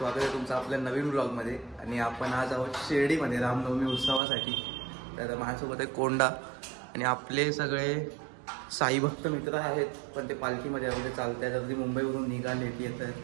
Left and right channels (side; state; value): left; drops out; at 4.2 s